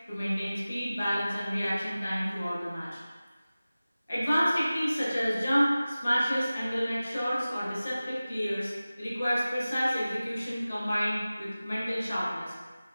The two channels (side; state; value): both; inverted; correlation -0.97